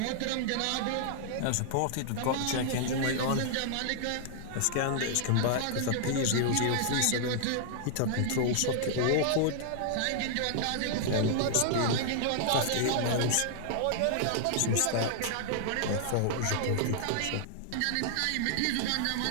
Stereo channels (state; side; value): different; both; correlation -0.01